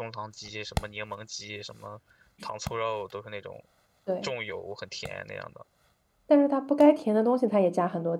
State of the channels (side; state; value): both; identical; correlation 1.00